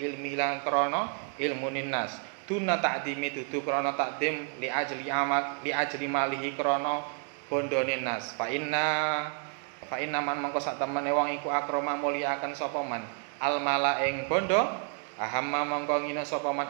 ilmi lan krana ilmunin nas duna takdimi dudu krana takdim li ajli malihi krana bondone nas fa inna man mangko sak temene wong iku akrama mulyakaken sapa man al mala ing bondo ahamma mangko ngina sapa man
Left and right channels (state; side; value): quieter; left; 39.6 dB